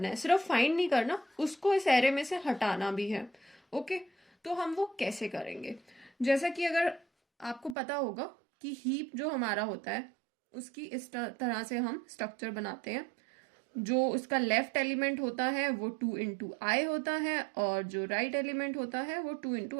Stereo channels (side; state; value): left; drops out; at 7.8 s